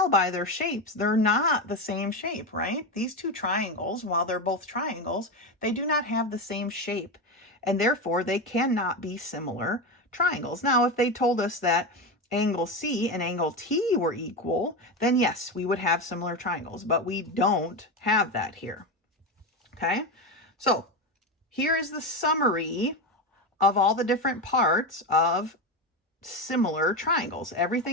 by their shapes, they're not the same shape, right? These two triangles, while they're both triangles, they do not have the same shape, and therefore they cannot be similar triangles. Now, if they told us that angle C and angle T were equal, then yes, we would have similar triangles, but we don't have that here, okay? So here is the summary of all the different parts of similar triangles,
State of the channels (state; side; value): normal; both; correlation 0.16